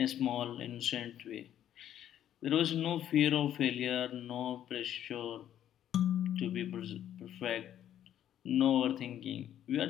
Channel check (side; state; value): right; quieter; 10.9 dB